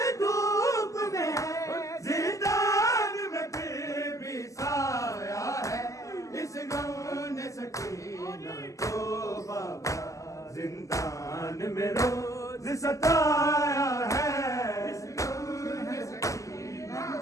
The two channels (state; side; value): late; right; 0.16 ms